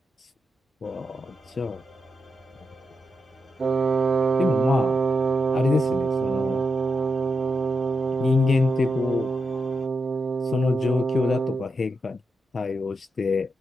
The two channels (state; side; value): normal; both; correlation 0.86